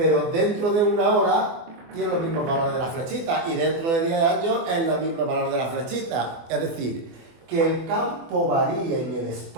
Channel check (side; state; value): left; late; 24 ms